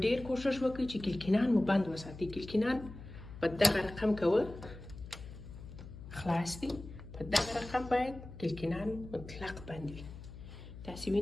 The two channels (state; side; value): noise; left; hum, 14 dB below the sound